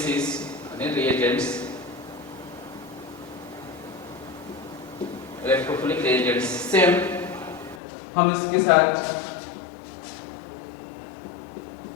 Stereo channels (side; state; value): right; drops out; at 7.8 s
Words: यानी रिएजेंट्स, इलेक्ट्रोफिलिक रिएजेंट्स। सेम हम इसके साथ